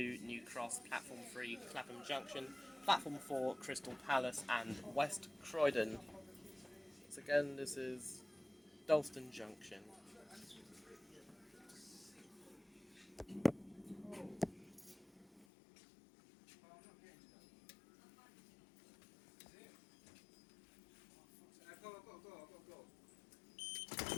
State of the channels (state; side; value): drops out; right; at 15.5 s